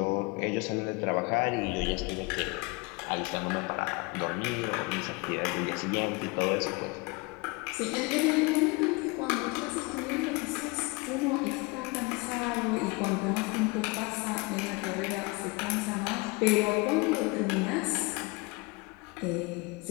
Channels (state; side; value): quieter; right; 26.5 dB